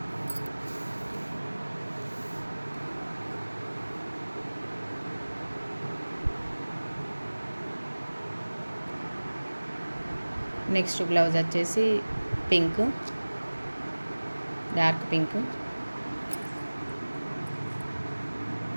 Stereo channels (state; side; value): inverted; both; correlation -1.00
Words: నెక్స్ట్ బ్లౌజ్ వచ్చేసి pink dark pink